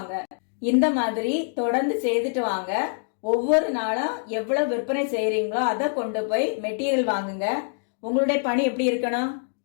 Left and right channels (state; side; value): silent; right; digital silence